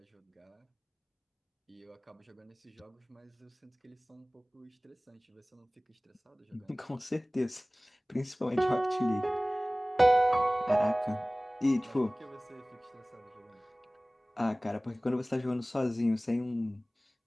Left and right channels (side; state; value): both; normal; correlation 0.98